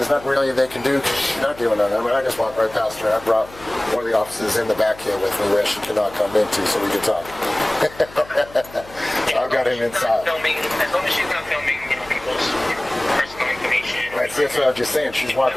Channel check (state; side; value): noise; left; hum, 20 dB below the sound